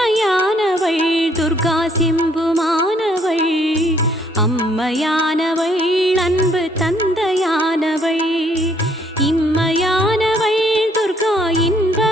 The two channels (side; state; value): both; normal; correlation 0.66